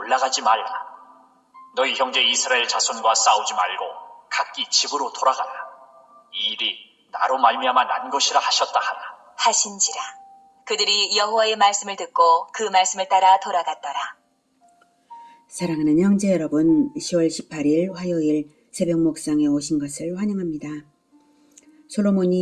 말라. 너희 형제 이스라엘 자손과 싸우지 말고 각기 집으로 돌아가라. 이 일이 나로 말미암아 난 것이라 하셨다 하라. 하신지라. 그들이 여호와의 말씀을 듣고 그 말씀을 따라 돌아갔더라. 사랑하는 형제 여러분, 10월 18일 화요일 새벽 목상에 오신 것을 환영합니다.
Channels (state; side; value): identical; both; correlation 1.00